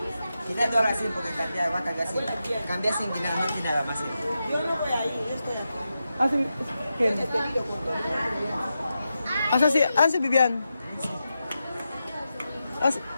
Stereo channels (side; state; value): both; inverted; correlation -0.89